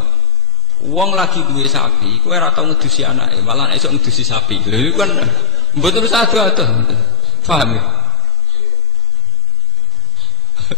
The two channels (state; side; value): normal; both; correlation 0.69